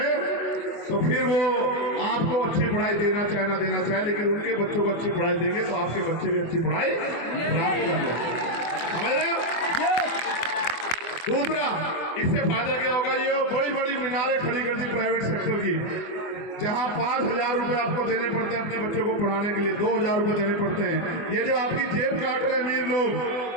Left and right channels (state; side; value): late; right; 24 ms